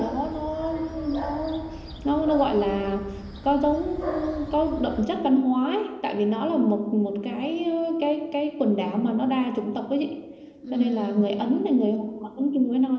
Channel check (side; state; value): both; identical; correlation 1.00